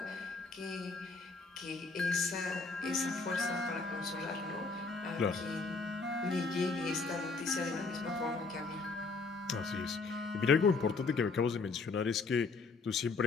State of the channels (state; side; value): quieter; right; 4.1 dB